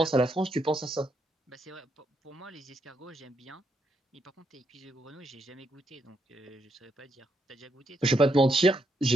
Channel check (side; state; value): both; normal; correlation 0.78